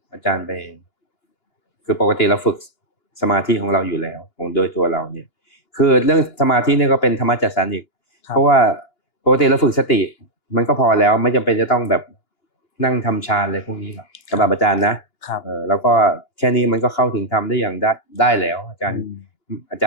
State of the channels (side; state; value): right; late; 2.9 ms